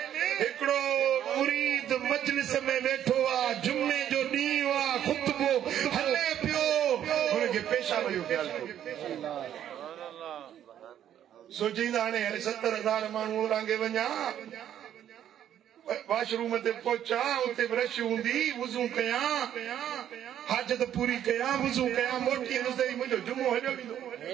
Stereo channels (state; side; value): quieter; left; 10.5 dB